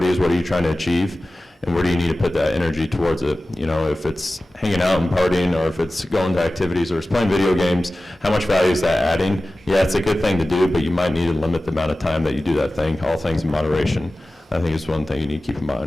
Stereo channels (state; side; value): normal; both; correlation 0.96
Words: what are you trying to achieve, and where do you need to put that energy towards it. You know, if it's hanging out and partying, or if it's going to activities, or it's playing video games, how much value is that adding? Yeah, it's a good thing to do, but you might need to limit the amount of time that you do that thing, all things in moderation. I think it's one thing you need to keep in